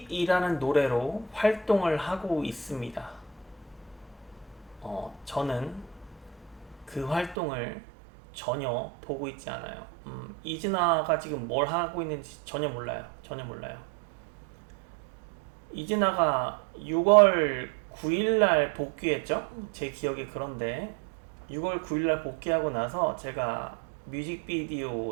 노래로 활동을 하고 있습니다. 저는 그 활동을 전혀 보고 있지 않아요. 이진아가 지금 뭘 하고 있는지 전혀 몰라요. 전혀 몰라요. 이진아가 6월 9일날 복귀했죠? 제 기억이 그런데 6월 9일날 복귀하고 나서 제가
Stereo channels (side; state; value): left; drops out; at 7.4 s